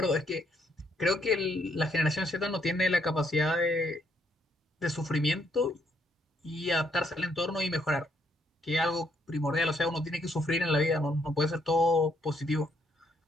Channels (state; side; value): normal; both; correlation 0.71